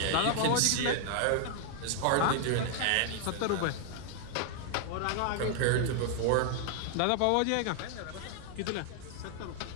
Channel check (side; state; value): both; different; correlation 0.00